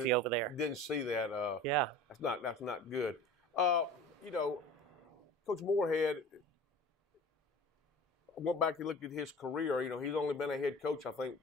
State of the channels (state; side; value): normal; both; correlation 0.39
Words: over there. Didn't see that. Yeah. That's not good. You know, Coach Moorhead, I went back and looked at his career. You know, he's only been a head coach, I think,